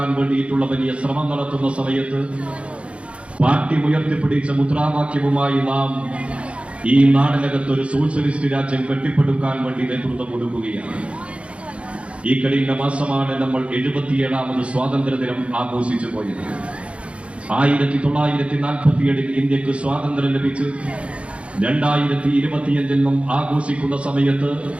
വേണ്ടിയിട്ടുള്ള വലിയ ശ്രമം നടത്തുന്ന സമയത്ത് പാർട്ടി ഉയർത്തിപ്പിടിച്ച മുദ്രാവാക്യവുമായി നാം ഈ നാടിനകത്ത് ഒരു സോഷ്യലിസ്റ്റ് രാജ്യം കെട്ടിപ്പടുക്കാൻ വേണ്ടി നേതൃത്വം കൊടുക്കുകയാണ്. ഈ കഴിഞ്ഞ മാസമാണ് നമ്മൾ 77ാമത് സ്വാതന്ത്ര്യദിനം ആഘോഷിച്ചു പോയത്. 1947 ഇന്ത്യക്ക് സ്വാതന്ത്ര്യം ലഭിച്ച് 2025 നാം ആഘോഷിക്കുന്ന സമയത്ത്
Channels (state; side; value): late; left; 0.061 ms